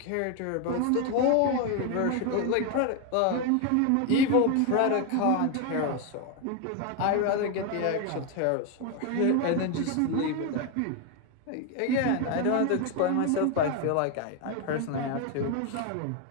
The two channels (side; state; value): both; different; correlation 0.01